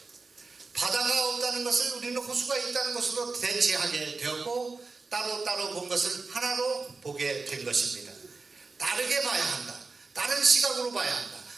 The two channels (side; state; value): left; quieter; 4.1 dB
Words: 바다가 없다는 것을 우리는 호수가 있다는 것으로 대체하게 되었고 따로따로 본 것을 하나로 보게 된 것입니다. 다르게 봐야 한다. 다른 시각으로 봐야 한다.